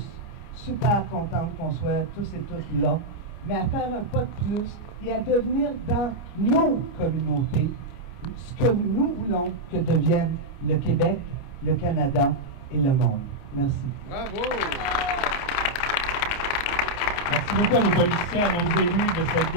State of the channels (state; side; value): late; right; 29 ms